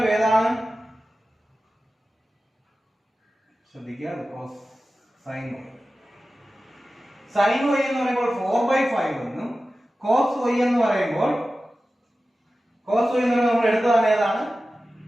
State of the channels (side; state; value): both; normal; correlation 0.95